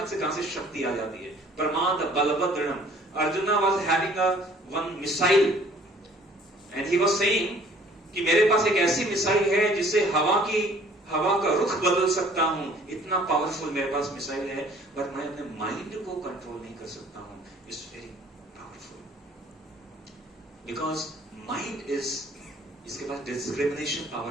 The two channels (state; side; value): normal; both; correlation 0.55